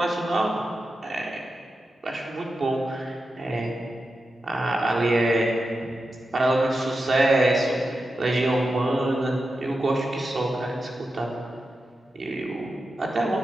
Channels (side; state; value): both; normal; correlation 0.90